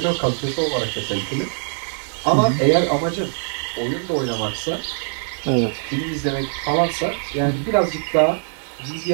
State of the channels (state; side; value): silent; left; 61 dB below the other